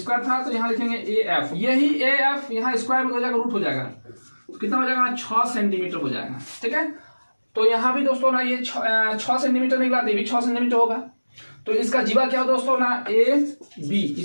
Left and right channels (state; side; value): inverted; both; correlation -1.00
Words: था, तो यहाँ लिखेंगे ए एफ, यही ए एफ यहाँ स्क्वायर में हो जाएगा, रूट हो जाएगा, तो कितना हो जाएगा ना 6 सेंटीमीटर हो जाएगा। ठीक है, तो यहां भी दोस्तों ना ये 6 सेंटीमीटर निकला, ये भी 6 सेंटीमीटर होगा, तो इसका जीवा क्या हो दोस्तों ना ए बी,